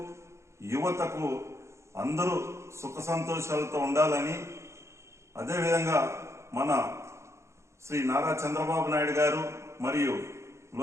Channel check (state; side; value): late; left; 0.14 ms